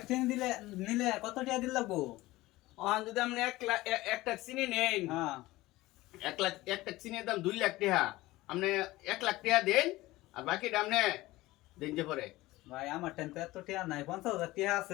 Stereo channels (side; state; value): right; quieter; 18.6 dB